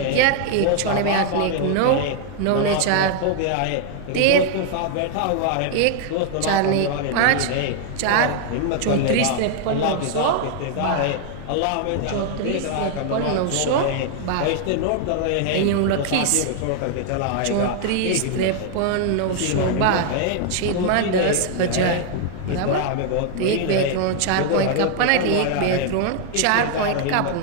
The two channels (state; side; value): different; both; correlation 0.00